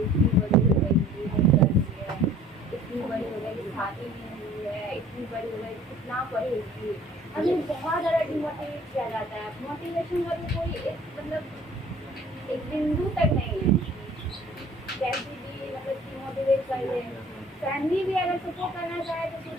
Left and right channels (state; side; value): normal; both; correlation 0.51